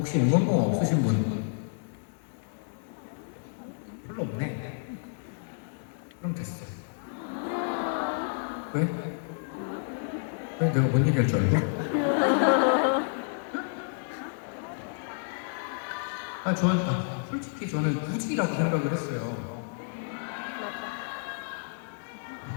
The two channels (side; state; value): right; silent; digital silence